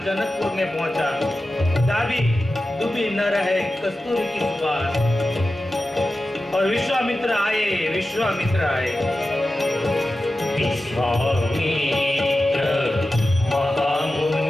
जनकपुर में पहुंचा। दाबी दुबी न रहे कस्तूरी की सुवास। और विश्वामित्र आए। विश्वामित्र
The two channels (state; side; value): normal; both; correlation 0.93